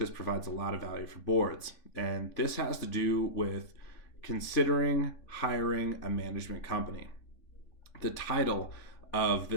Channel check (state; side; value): late; right; 3.5 ms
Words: provides a lot of value for boards. And this has to do with considering hiring a management company. The title of